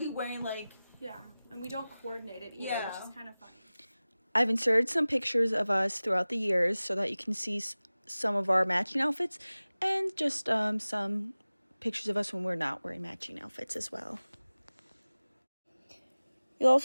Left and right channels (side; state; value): both; inverted; correlation -0.98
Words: wearing like and we don't coordinate it either, which is kind of funny. I've inserted some pictures of us throughout the years so that you can see some of our matching outfits and just some pictures of us when we're not wearing matching outfits as well. You'll